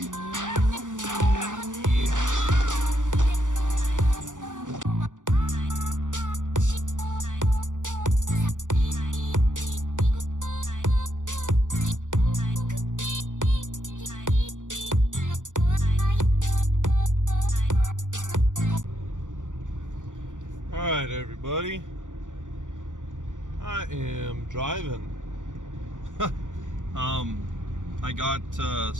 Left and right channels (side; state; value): left; late; 0.87 ms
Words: Alright everybody, I am driving. I got